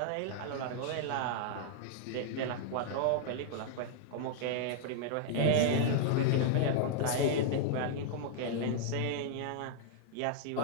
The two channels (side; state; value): both; different; correlation -0.01